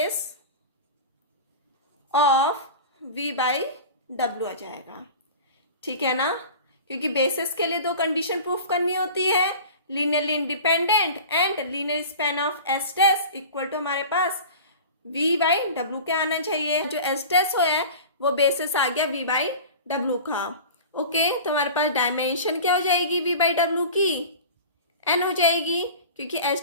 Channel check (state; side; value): inverted; both; correlation -0.36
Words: of v by W आ जाएगा। ठीक है ना, क्योंकि बेसिस के लिए दो कंडीशन प्रूफ करनी होती है, linearly independent and linear span of S dash equal to हमारे पास v बाई डब्ल्यू क्या आना चाहिए। जो एस डैश हो है वो बेसिस आ गया v बाई डब्ल्यू का। ओके, तो हमारे पास डायमेंशन क्या हो जाएगी v बाई डब्ल्यू की, n हो जाएगी, क्योंकि